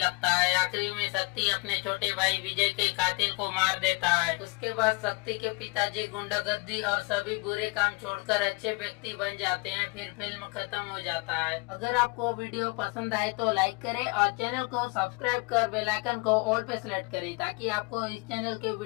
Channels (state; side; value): quieter; right; 28.1 dB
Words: है। आखिरी में शक्ति अपने छोटे भाई विजय के कातिल को मार देता है। उसके बाद शक्ति के पिताजी गुंडागर्दी और सभी बुरे काम छोड़कर अच्छे व्यक्ति बन जाते हैं। फिर फिल्म खत्म हो जाता है। अगर आपको वीडियो पसंद आए तो लाइक करें और चैनल को सब्सक्राइब कर बेल आइकन को ऑल पे सेलेक्ट करें ताकि आपको इस चैनल के